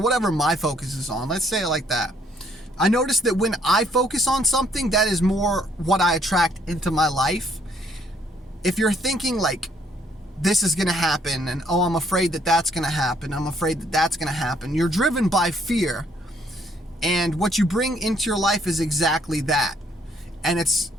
my focus is on, let's say it like that. I noticed that when I focus on something, that is more what I attract into my life. If you're thinking like, this is going to happen, and oh, I'm afraid that that's going to happen, I'm afraid that that's going to happen, you're driven by fear. And what you bring into your life is exactly that. And it's,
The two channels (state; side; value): normal; both; correlation 0.66